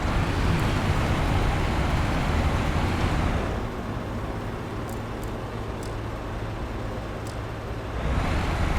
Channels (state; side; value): identical; both; correlation 1.00